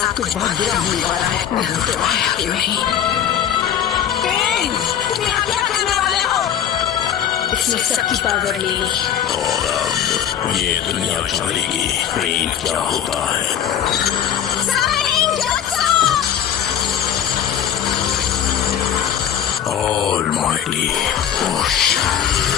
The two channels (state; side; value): quieter; right; 9.7 dB